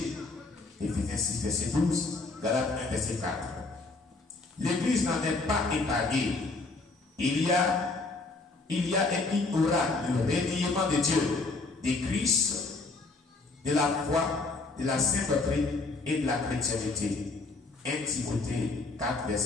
Éphésiens 6, verset 12, Galates 1, verset 4. L'Église n'en est pas épargnée. Il y a et il aura le reniement de Dieu, de Christ, de la foi, de la sainte doctrine et de la chrétienté. 1 Timothée 4,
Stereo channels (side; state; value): right; quieter; 3.5 dB